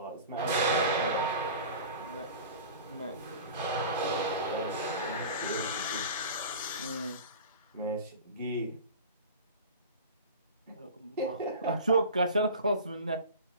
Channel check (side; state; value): both; inverted; correlation -0.36